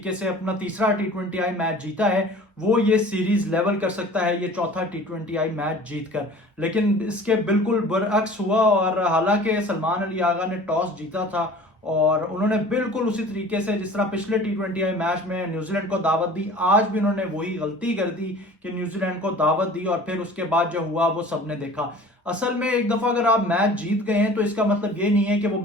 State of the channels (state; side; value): normal; both; correlation 0.45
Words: से अपना तीसरा टी20 मैच जीता है वो ये सीरीज लेवल कर सकता है ये चौथा टी20 मैच जीतकर। लेकिन इसके बिल्कुल बरअक्स हुआ और हालांकि सलमान अली आगा ने टॉस जीता था और उन्होंने बिल्कुल उसी तरीके से जिस तरह पिछले टी20 मैच में न्यूजीलैंड को दावत दी, आज भी उन्होंने वही गलती कर दी कि न्यूजीलैंड को दावत दी और फिर उसके बाद जो हुआ वो सबने देखा। असल में एक दफा अगर आप मैच जीत गए हैं तो इसका मतलब ये नहीं है कि वो